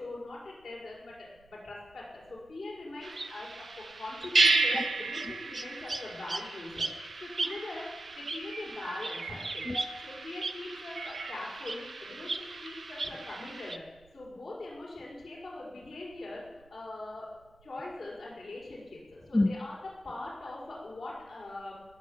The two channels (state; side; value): noise; right; rumble, 29 dB below the sound